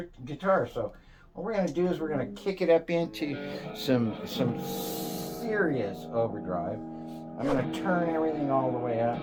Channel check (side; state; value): both; identical; correlation 1.00